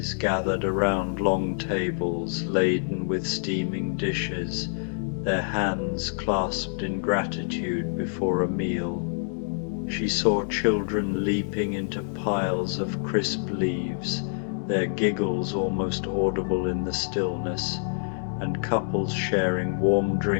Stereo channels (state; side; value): silent; right; digital silence